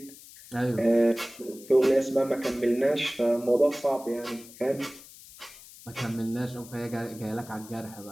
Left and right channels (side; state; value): left; noise; hiss, 19 dB below the sound